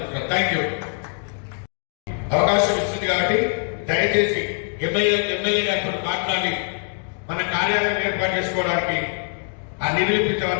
Thank you. అవకాశం ఇస్తుంది కాబట్టి దయచేసి ఎమ్మెల్యే గారితో మాట్లాడి మన కార్యాలయం ఏర్పాటు చేసుకోవడానికి ఆ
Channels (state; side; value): silent; right; 56 dB below the other